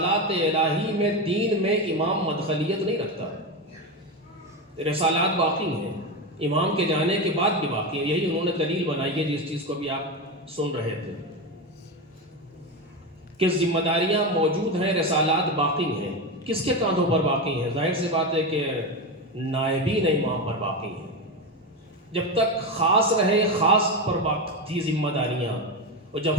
الہی میں دین میں امام مدخلیت نہیں رکھتا، رسالات باقی ہیں، امام کے جانے کے بعد بھی باقی ہیں۔ یہی انہوں نے دلیل بنائی ہے جس چیز کو بھی آپ سن رہے تھے کہ ذمہ داریاں موجود ہیں، رسالات باقی ہیں۔ کس کے کاندھوں پر باقی ہیں؟ ظاہر سی بات ہے کہ نائبین امام پر باقی ہیں۔ جب تک خاص رہے خاص پر باقی تھی ذمہ داریاں، اور جب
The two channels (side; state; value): both; normal; correlation 0.16